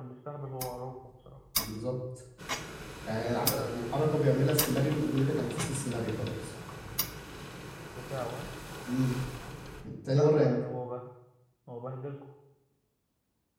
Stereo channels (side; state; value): both; identical; correlation 1.00